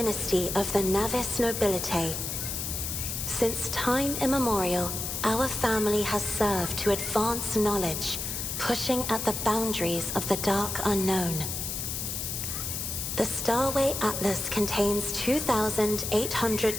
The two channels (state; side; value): noise; left; hiss, 4 dB below the sound